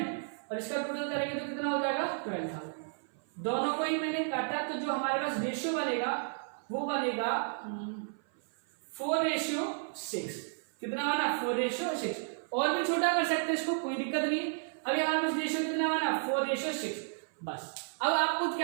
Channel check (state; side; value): silent; left; 55 dB below the other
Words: और इसका टोटल करेंगे तो कितना हो जाएगा 12000। दोनों को ही मैंने काटा, तो जो हमारे पास रेशियो बनेगा वो बनेगा 4:6। कितना बना 4:6। और भी छोटा कर सकते हैं इसको, कोई दिक्कत नहीं। अभी हमारे पास रेशियो कितना बना 4:6 बस। अब आपको